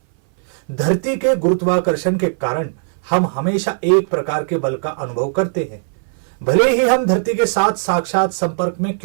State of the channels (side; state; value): left; silent; 60 dB below the other